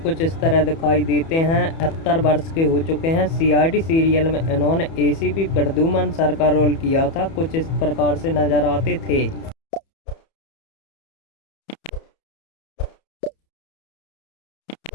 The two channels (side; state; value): right; late; 31 ms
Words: इस तरह दिखाई देते हैं। 78 वर्ष के हो चुके हैं। सीआईडी सीरियल में इन्होंने एसीपी प्रद्युमन सर का रोल किया था। कुछ इस प्रकार से नजर आते थे।